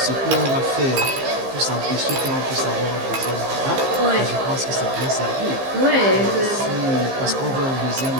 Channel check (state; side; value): late; left; 15 ms